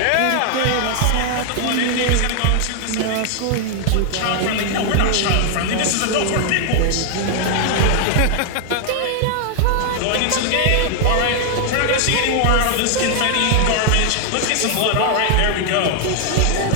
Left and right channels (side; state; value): both; different; correlation 0.00